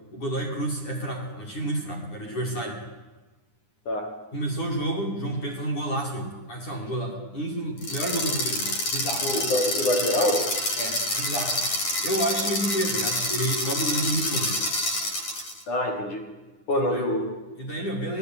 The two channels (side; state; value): right; late; 9.9 ms